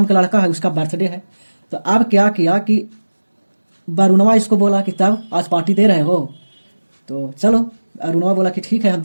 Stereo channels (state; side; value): inverted; both; correlation -1.00